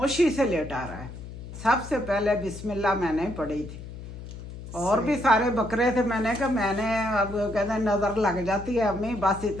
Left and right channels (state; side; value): noise; left; hum, 12 dB below the sound